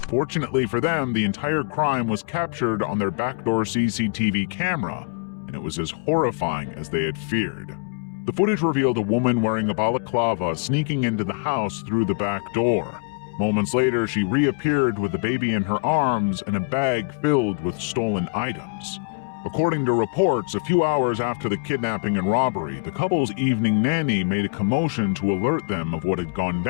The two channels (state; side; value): quieter; right; 36.8 dB